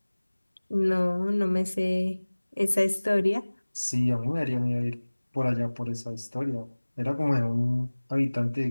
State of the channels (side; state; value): both; inverted; correlation -1.00